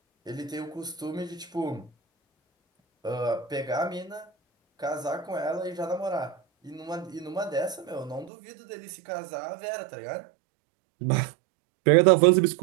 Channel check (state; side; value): drops out; left; at 8.3 s